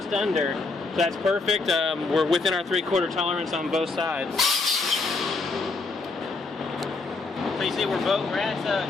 under. So that's perfect. We're within our 3/4 tolerance on both sides. So you see we're at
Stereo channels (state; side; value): quieter; right; 3.8 dB